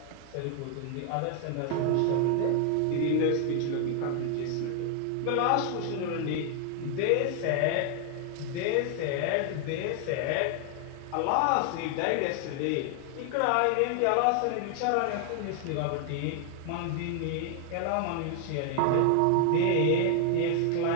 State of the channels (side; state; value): both; different; correlation 0.00